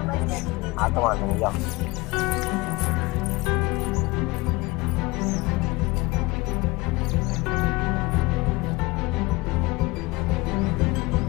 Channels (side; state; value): right; quieter; 22.9 dB